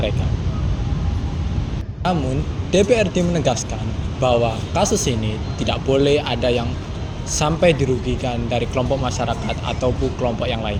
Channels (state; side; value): identical; both; correlation 1.00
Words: Namun, DPRD menegaskan bahwa kasus ini tidak boleh ada yang sampai dirugikan dari kelompok masyarakat ataupun kelompok yang lain.